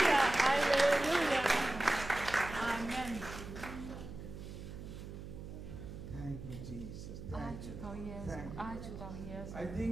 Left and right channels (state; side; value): noise; right; hum, 10 dB below the sound